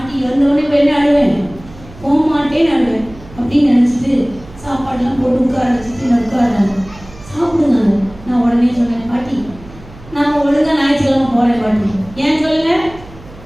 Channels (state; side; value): noise; right; hum, 19 dB below the sound